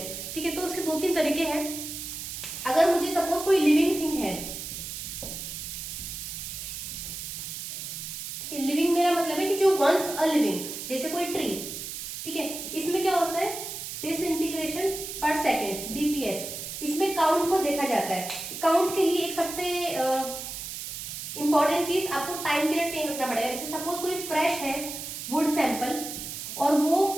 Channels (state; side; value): noise; right; hiss, 7 dB below the sound